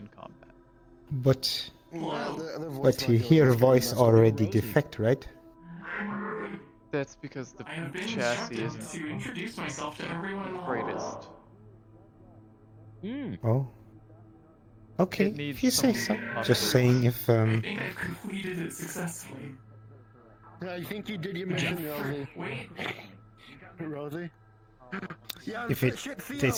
combat. But you hear voice already defect, right? That's because the chassis isn't the greatest. Oh. Okay, It needs if you say some so. Just saying if completed it successfully. Yeah, I think you did your mission, Rosie. Rosie? Yeah, if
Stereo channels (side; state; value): both; identical; correlation 1.00